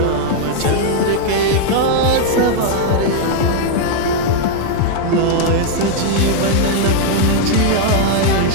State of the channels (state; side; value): different; both; correlation -0.01